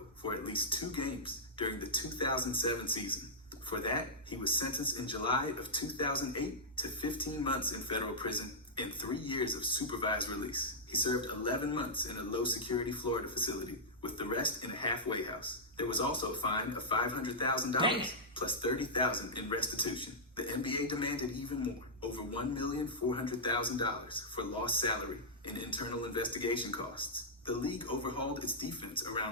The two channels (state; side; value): normal; both; correlation -0.12